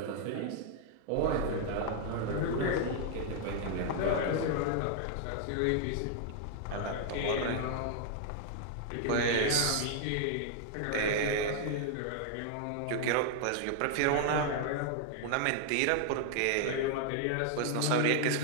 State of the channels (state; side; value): different; both; correlation 0.00